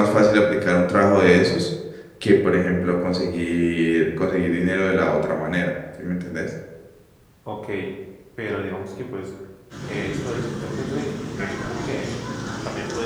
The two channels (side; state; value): both; identical; correlation 1.00